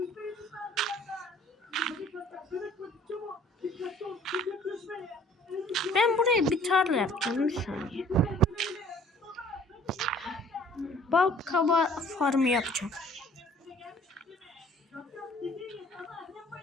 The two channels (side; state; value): both; normal; correlation 0.55